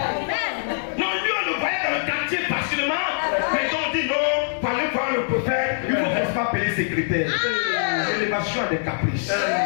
Non, lui on le voyait dans le quartier facilement. Mais quand on dit non, pour aller voir le prophète, il faut qu'on se appeler secrétaire. L'élévation a des caprices.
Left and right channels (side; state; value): right; silent; 63 dB below the other